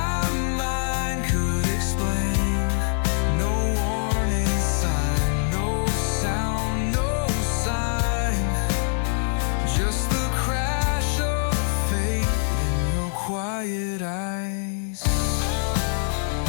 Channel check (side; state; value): right; silent; 63 dB below the other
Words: mind could explain. No warning sign, no sound, no sign, just the crash of fate in your quiet eyes.